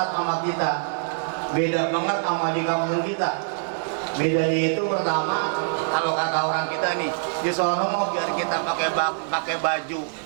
sama kita. Beda banget sama di kampung kita. Bedanya itu pertama, kalau kata orang kita nih, di sono mau biar kita pakai baju.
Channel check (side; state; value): left; silent; 62 dB below the other